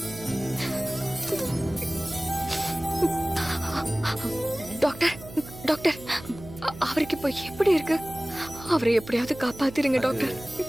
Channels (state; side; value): noise; right; hum, 15 dB below the sound